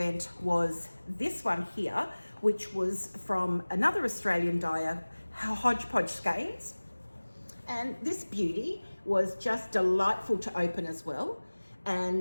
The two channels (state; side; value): inverted; both; correlation -1.00